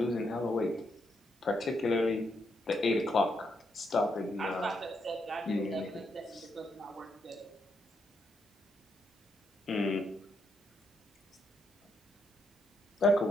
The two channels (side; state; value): both; normal; correlation 0.79